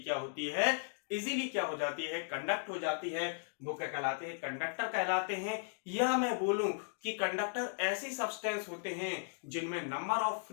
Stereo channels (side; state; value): right; silent; digital silence